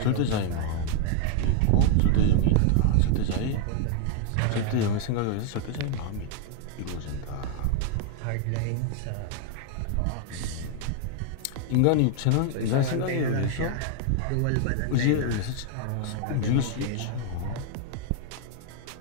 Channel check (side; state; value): both; different; correlation 0.00